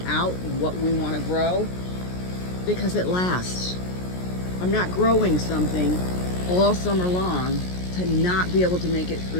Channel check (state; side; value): late; right; 17 ms